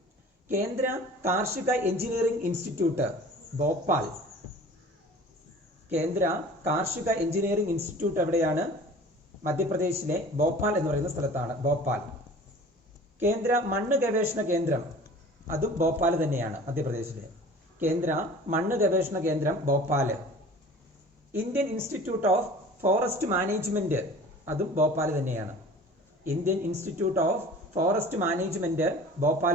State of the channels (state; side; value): normal; both; correlation 0.44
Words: കേന്ദ്ര കാർഷിക എഞ്ചിനീയറിംഗ് ഇൻസ്റ്റിറ്റ്യൂട്ട് ഭോപ്പാൽ. കേന്ദ്ര കാർഷിക എഞ്ചിനീയറിംഗ് ഇൻസ്റ്റിറ്റ്യൂട്ട് എവിടെയാണ്? മധ്യപ്രദേശിലെ ഭോപ്പാൽ എന്ന് പറയുന്ന സ്ഥലത്താണ്, ഭോപ്പാൽ. കേന്ദ്ര മണ്ണ് ഗവേഷണ കേന്ദ്രം, അതും ഭോപ്പാൽ തന്നെയാണ്, മധ്യപ്രദേശിലെ. കേന്ദ്ര മണ്ണ് ഗവേഷണ കേന്ദ്രം Bhopal. Indian institute of forest management, അതും ഭോപ്പാൽ തന്നെയാണ്. Indian institute of forest management